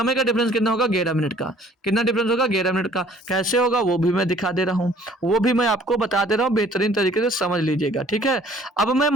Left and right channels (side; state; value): both; normal; correlation 0.56